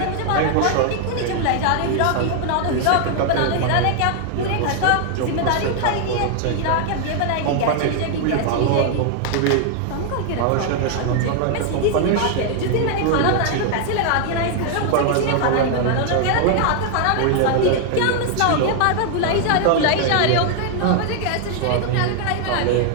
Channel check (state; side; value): different; both; correlation 0.00